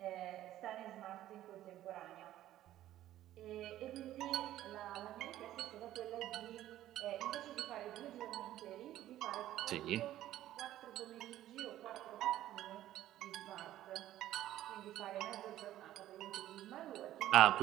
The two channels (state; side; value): quieter; left; 13.5 dB